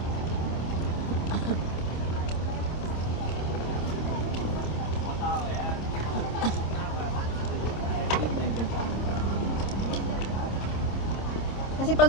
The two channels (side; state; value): right; late; 26 ms